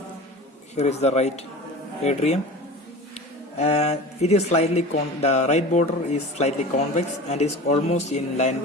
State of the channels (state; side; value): normal; both; correlation 0.35